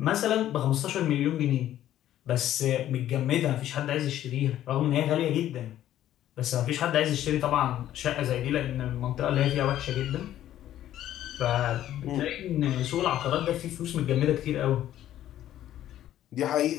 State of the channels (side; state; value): right; quieter; 12.4 dB